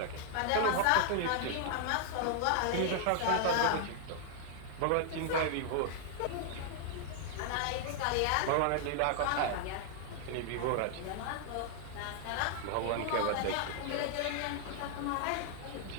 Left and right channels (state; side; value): different; both; correlation 0.00